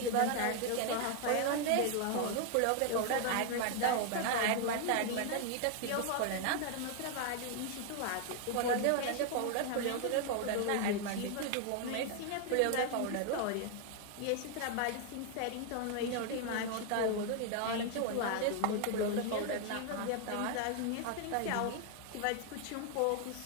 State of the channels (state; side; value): different; both; correlation 0.00